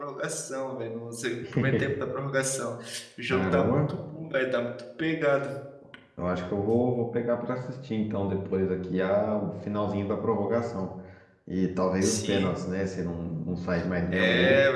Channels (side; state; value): both; identical; correlation 1.00